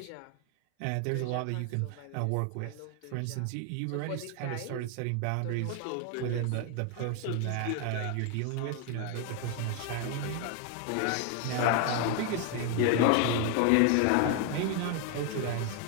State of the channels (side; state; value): both; different; correlation 0.01